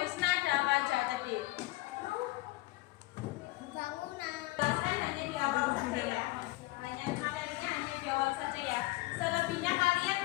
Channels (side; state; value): right; quieter; 19.9 dB